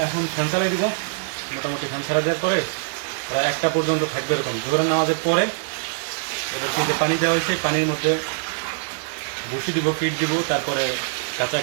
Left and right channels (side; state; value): left; silent; digital silence